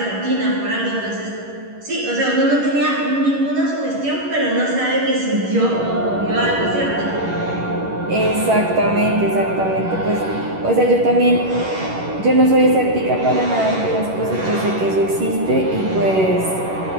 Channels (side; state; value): left; late; 11 ms